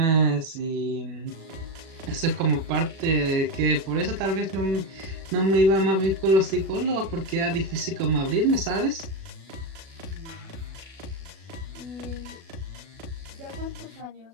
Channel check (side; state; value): left; late; 37 ms